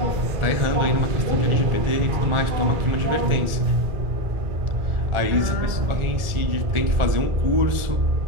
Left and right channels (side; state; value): left; late; 1.4 ms